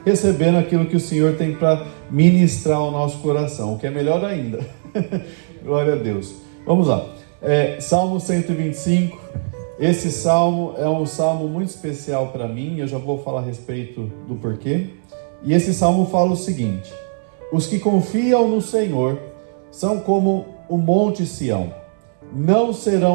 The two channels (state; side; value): silent; left; 66 dB below the other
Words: recebendo aquilo que o Senhor tem para ministrar ao nosso coração, o que é melhor ainda. Glória a Deus. Vamos lá. Salmo 125. Esse salmo é um salmo muito especial para mim, eu já vou falar a respeito do porquê. E esse salmo fala o seguinte: os que confiam no Senhor são como o monte Sião, não